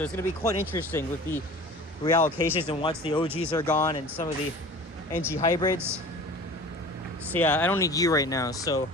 it's going to be quite interesting with the reallocations and once the OGs are gone and some of the NG hybrids. So yeah, I don't need you right now. So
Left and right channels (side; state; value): both; normal; correlation 0.40